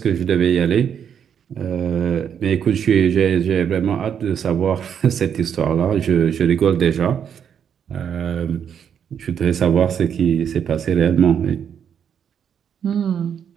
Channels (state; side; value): quieter; left; 8.2 dB